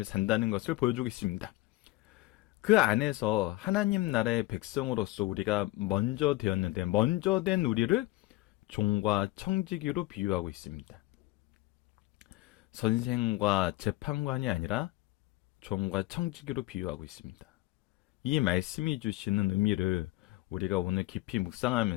산다는 것을 보여주고 있습니다. 그 안에서 하나님 나라의 백성으로서 우리가 먼저 되었는데 먼저 된 우리를 종과 청지기로 비유하고 있습니다. 선생과 재판관이 아니라 종과 청지기로 비유하고 있습니다. 이 말씀이 주시는 의미를 우리가 오늘 깊이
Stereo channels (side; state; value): right; quieter; 18.7 dB